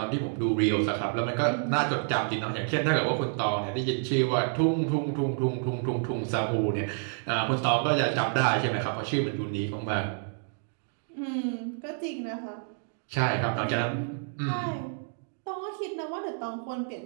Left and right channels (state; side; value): silent; left; 59 dB below the other